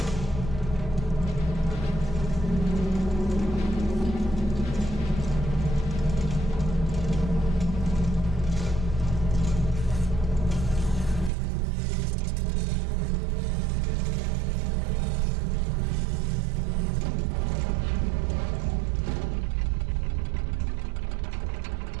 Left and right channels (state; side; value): drops out; left; at 11.3 s